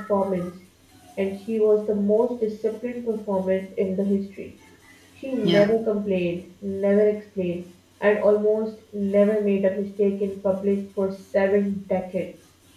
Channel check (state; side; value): identical; both; correlation 1.00